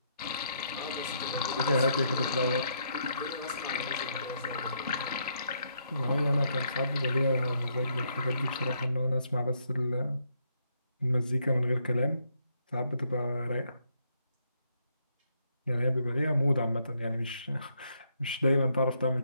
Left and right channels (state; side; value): inverted; both; correlation -0.75